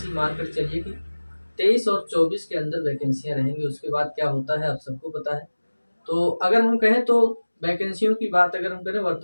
मानकर चलिए कि 23 और 24 के अंदर वैकेंसियाँ रहेंगी। उसके बाद क्या होता है आप सबको पता है। तो अगर हम कहें तो वैकेंसियों की बात अगर हम करें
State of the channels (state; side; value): inverted; both; correlation -1.00